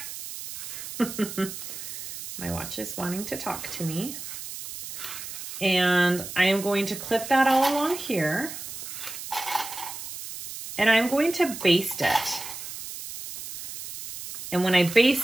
My watch is wanting to talk to me. And I am going to clip that all along here. And I'm going to baste it. And when I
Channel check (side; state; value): right; noise; hiss, 10 dB below the sound